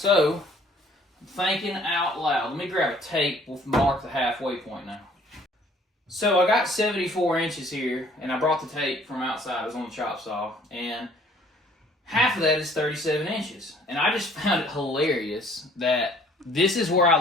I'm thinking out loud. Let me grab a tape. We'll mark the halfway point now. So, I got 74 inches here, and I brought the tape from outside. It was on the chop saw. And half of that is 37 inches. And I just found it hilarious that this is where I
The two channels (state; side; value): normal; both; correlation 0.57